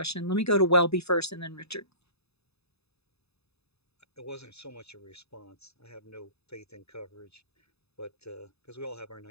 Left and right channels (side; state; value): right; late; 0.79 ms